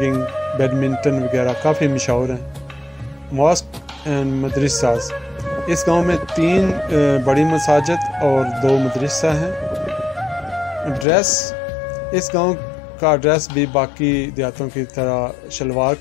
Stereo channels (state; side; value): drops out; right; at 11.1 s